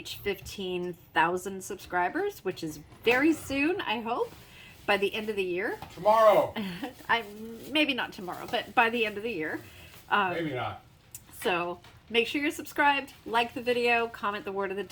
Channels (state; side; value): identical; both; correlation 1.00